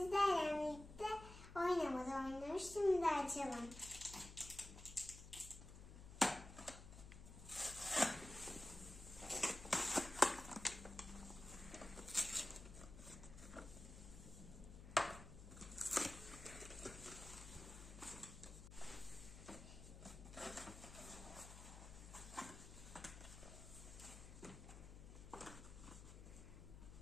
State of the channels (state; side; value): noise; left; hum, 13 dB below the sound